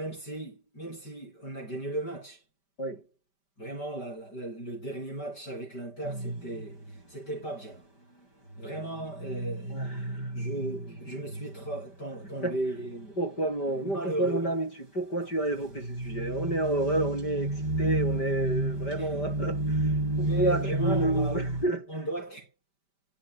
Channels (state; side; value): late; right; 5.1 ms